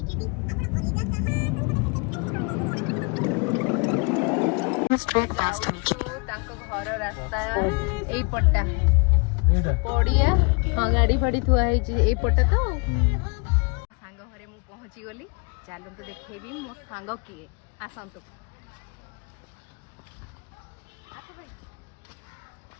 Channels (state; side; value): quieter; right; 32.9 dB